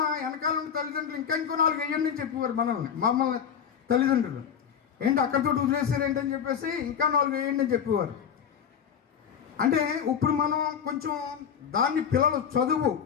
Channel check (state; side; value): quieter; right; 7.8 dB